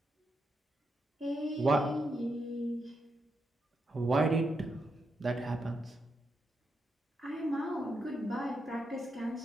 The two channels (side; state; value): both; normal; correlation 0.83